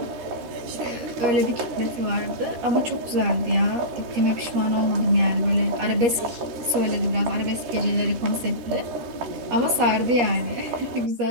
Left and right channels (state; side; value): late; left; 13 ms